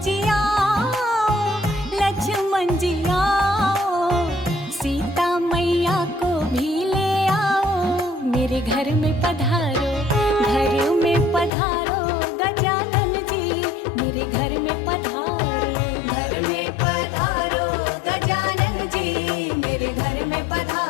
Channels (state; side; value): drops out; right; at 11.5 s